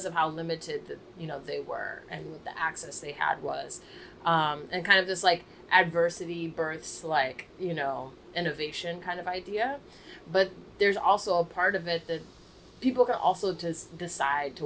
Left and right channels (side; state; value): both; identical; correlation 1.00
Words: of how limited they were and what the access they had was, and kind of this like adversity births like innovation kind of idea. But there's also a part of it that people can also just decide to